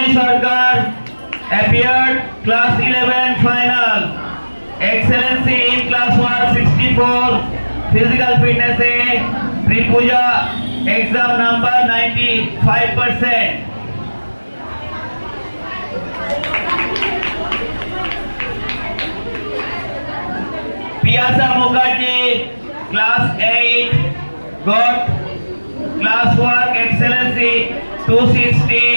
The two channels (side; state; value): both; inverted; correlation -1.00